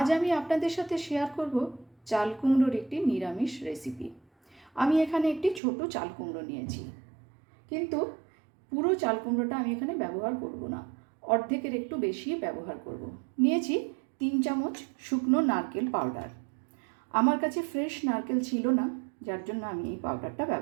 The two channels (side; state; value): left; drops out; at 5.6 s